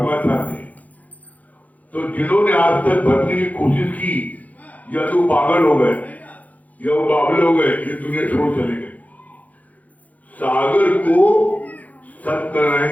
चाहते हैं। तो जिन्होंने आज तक भरने की कोशिश की, या तो पागल हो गए या वो बाबले हो गए, ये दुनिया छोड़ चले गए। सागर को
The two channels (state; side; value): late; right; 0.076 ms